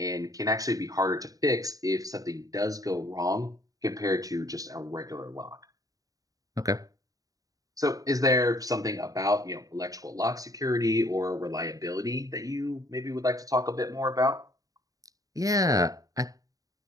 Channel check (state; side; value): late; left; 0.17 ms